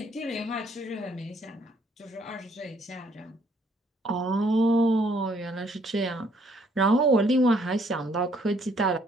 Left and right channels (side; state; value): both; normal; correlation 0.66